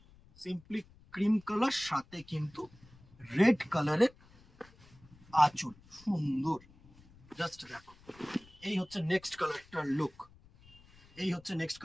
সিম্পলি ক্রিম কালার, সাথে কিন্তু রেড কালারের আঁচল, সুন্দর। জাস্ট দেখো, এই হচ্ছে নেক্সট কালারটার লুক, এই হচ্ছে নেক্সট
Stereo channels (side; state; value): left; noise; rumble, 25 dB below the sound